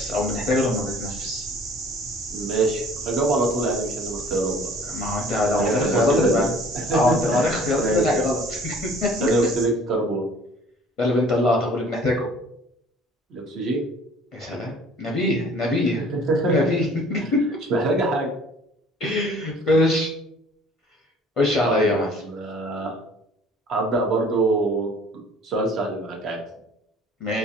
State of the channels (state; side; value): normal; both; correlation 0.52